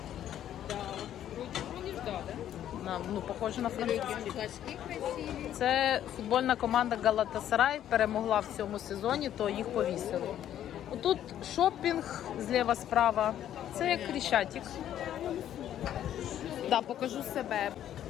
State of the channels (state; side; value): quieter; right; 11.1 dB